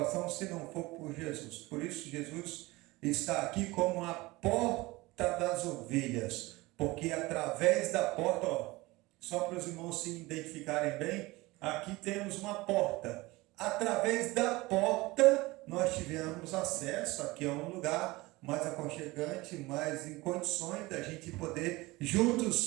se não for por Jesus. Por isso Jesus está aqui como a porta das ovelhas, porque através da porta, ó, só para os irmãos se identificarem bem, aqui temos uma porta. Através da porta nós tivemos acesso, aqui é um lugar mais aconchegante, mais em condições da gente poder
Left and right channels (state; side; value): quieter; left; 21.3 dB